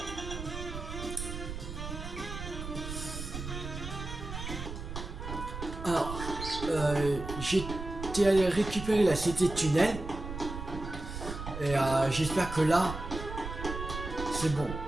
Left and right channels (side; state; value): right; noise; rumble, 7 dB below the sound